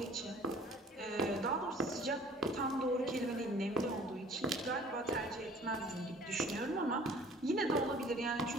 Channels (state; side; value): normal; both; correlation 0.51